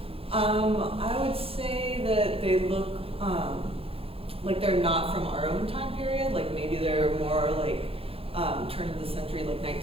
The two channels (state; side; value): late; left; 0.27 ms